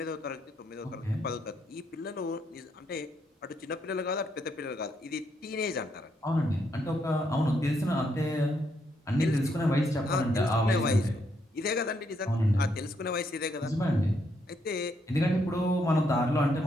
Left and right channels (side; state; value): both; normal; correlation 0.76